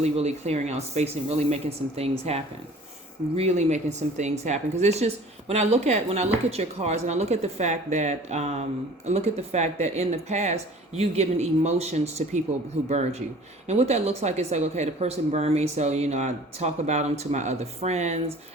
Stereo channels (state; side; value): normal; both; correlation 0.47